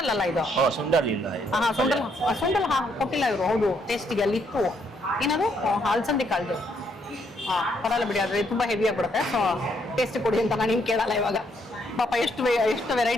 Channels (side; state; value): both; normal; correlation 0.72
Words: ಅಲ್ಲ ಇದು. ಸುಂಡಲ್ ಇಲ್ಲ. ಹಾ ಸುಂಡಲ್ ಕೊಟ್ಟಿಲ್ಲ ಇವರು. ಹೌದು, ಟೇಸ್ಟಿಗೆ ಅಲ್ಲಿ ಇತ್ತು. ಏನದು ಅಲಸಂದಿ ಕಾಳ್ದು. ಹಾ ಪರಲ್ಲ ಬಿಡಿ, ಆದ್ರೆ ತುಂಬಾ ಹೆವಿ ಆಗ್ಬಿಡುತ್ತೆ. ಸೊ ಟೇಸ್ಟ್ ಕೊಡಿ ಅಂತ ನಾನು ನಿಮ್ಗೆ ಕೇಳಲ್ಲ ಇವಾಗ. ಪಾಪ ಎಷ್ಟು